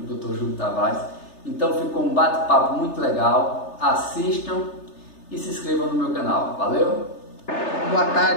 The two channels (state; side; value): late; right; 3.3 ms